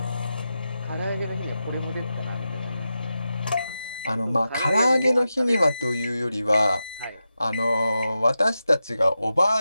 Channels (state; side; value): inverted; both; correlation -0.91